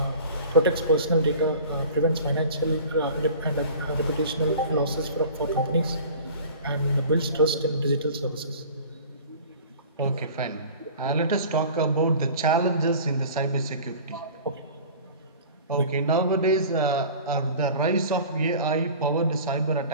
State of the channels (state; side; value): inverted; both; correlation -0.42